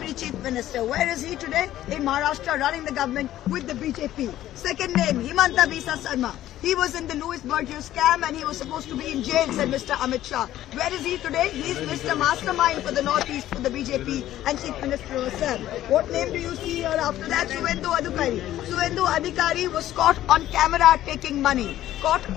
Chief Minister. Where is he today? In Maharashtra, running the government with the BJP. Second name, Himanta Bisa Sarma. He was in the Louis Berger scam and he was supposed to be in jail, said Mr. Amit Shah. Where is he today? He is Mr. Mastermind for the Northeast, for the BJP and Chief Minister herself. What name do you see here after that? Suvendu Adhikari. Suvendu Adhikari was caught on camera taking money. Caught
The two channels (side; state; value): right; quieter; 13.4 dB